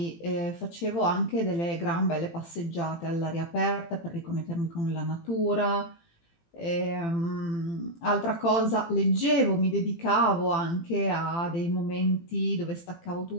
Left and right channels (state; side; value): late; right; 18 ms